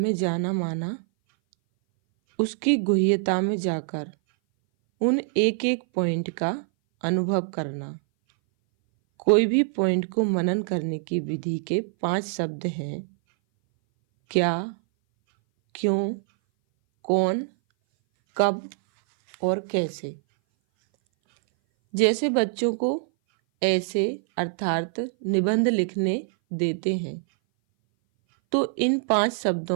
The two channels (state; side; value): silent; left; 59 dB below the other